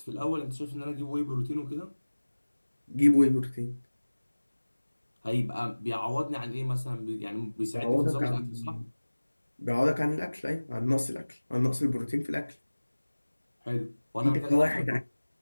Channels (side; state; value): both; inverted; correlation -1.00